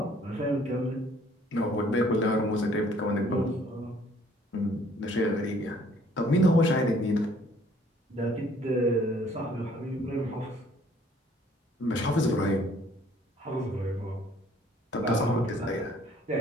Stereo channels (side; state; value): both; normal; correlation 0.59